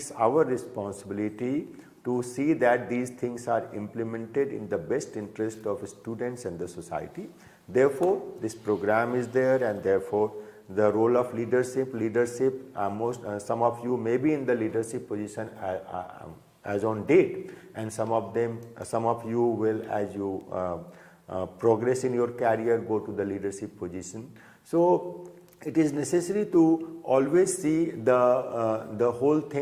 our responsibility to see that these things are implemented in the best interest of students and the society. Therefore, this program is there, and therefore the role of leadership, some of you may be in the leadership position as on date, and some of you will, as you progress in your career, go to the leadership position. So it is necessary to always see the whole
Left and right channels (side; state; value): both; identical; correlation 1.00